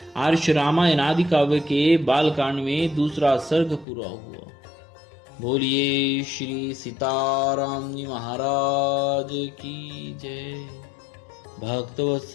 आर्ष रामायण आदि काव्य के बालकांड में दूसरा सर्ग पूरा हुआ। बोलिए श्री सीताराम जी महाराज की जय।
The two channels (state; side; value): drops out; right; at 3.9 s